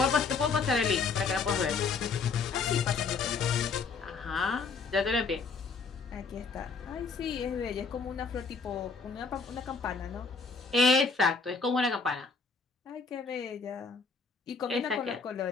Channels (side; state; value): right; quieter; 4.8 dB